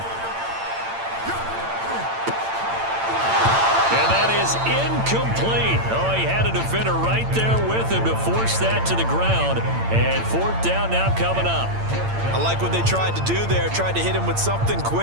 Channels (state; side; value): late; left; 8.8 ms